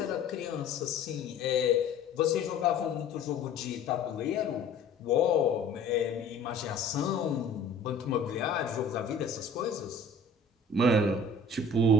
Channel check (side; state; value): right; quieter; 3.4 dB